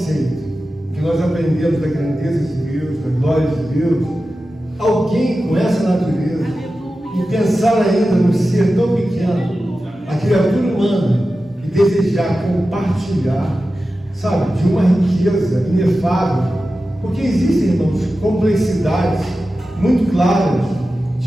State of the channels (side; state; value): both; normal; correlation 0.93